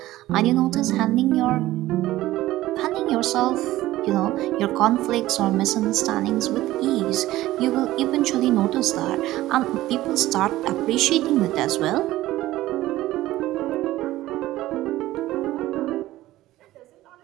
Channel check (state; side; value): quieter; left; 16.0 dB